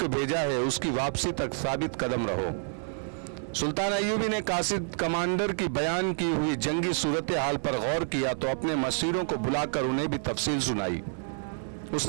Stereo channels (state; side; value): silent; left; 59 dB below the other